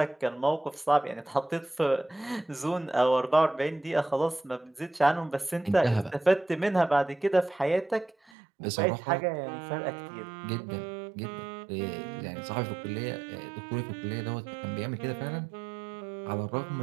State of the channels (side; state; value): left; drops out; at 8.3 s